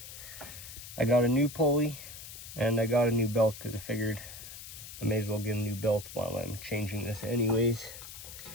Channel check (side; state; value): left; noise; hiss, 12 dB below the sound